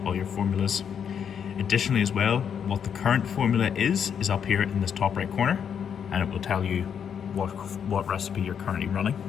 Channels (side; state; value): right; quieter; 7.8 dB